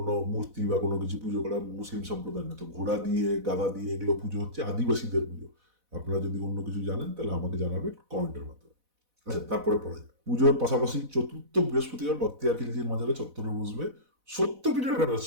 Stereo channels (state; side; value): late; left; 4.0 ms